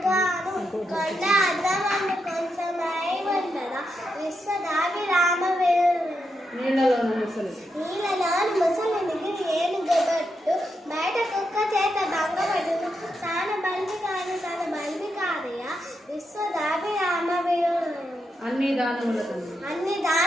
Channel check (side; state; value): both; normal; correlation 0.84